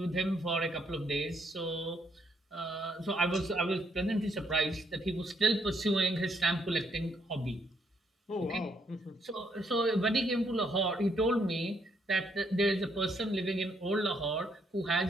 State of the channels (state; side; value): normal; both; correlation 0.72